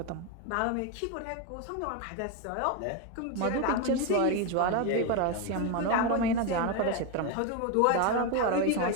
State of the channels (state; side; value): different; both; correlation 0.02